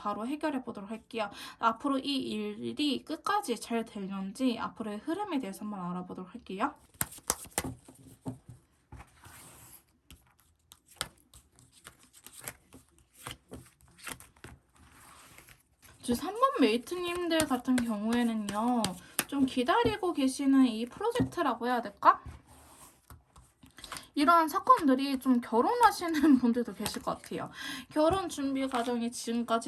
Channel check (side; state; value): both; identical; correlation 1.00